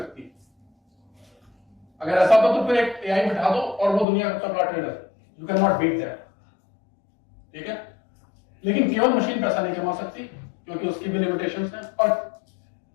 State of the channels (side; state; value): right; drops out; at 4.0 s